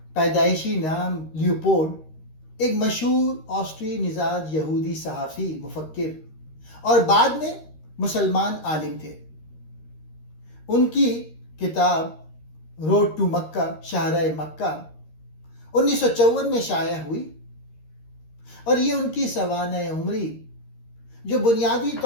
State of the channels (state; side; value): late; right; 13 ms